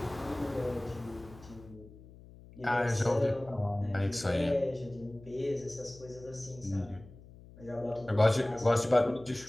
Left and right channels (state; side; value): noise; left; hum, 20 dB below the sound